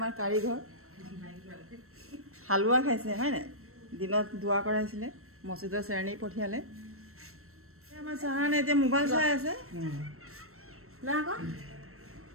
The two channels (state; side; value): late; left; 0.63 ms